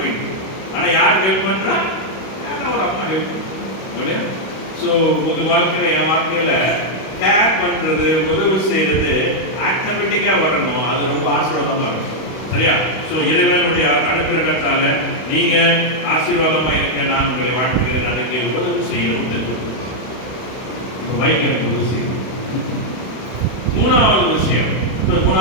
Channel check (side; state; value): right; late; 32 ms